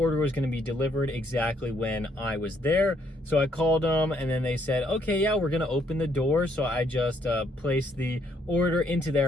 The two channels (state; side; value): normal; both; correlation 0.70